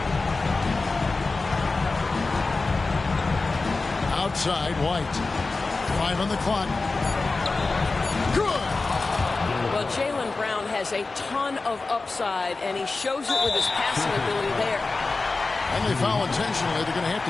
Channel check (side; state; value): right; quieter; 3.7 dB